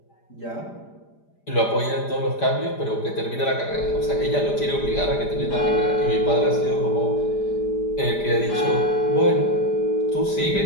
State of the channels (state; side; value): late; right; 5.0 ms